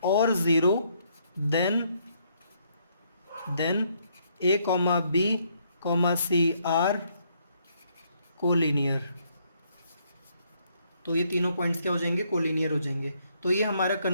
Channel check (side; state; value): both; inverted; correlation -0.71